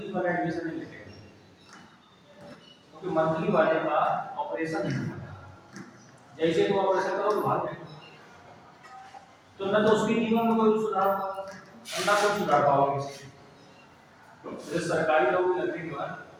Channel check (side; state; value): both; identical; correlation 1.00